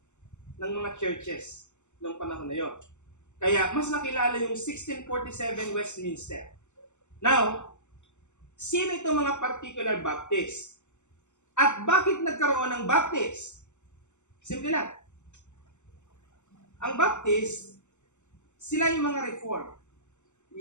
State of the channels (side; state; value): right; late; 0.83 ms